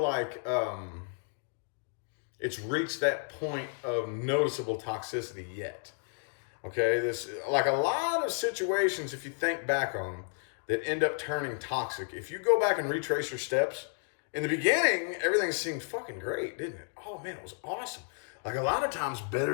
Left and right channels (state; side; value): silent; right; 56 dB below the other